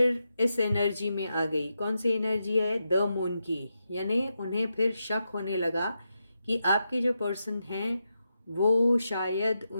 इस एनर्जी में आ गई। कौन सी एनर्जी है? द मून की। यानी उन्हें फिर शक होने लगा कि आपके जो पर्सन हैं वो शायद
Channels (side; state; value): both; inverted; correlation -0.86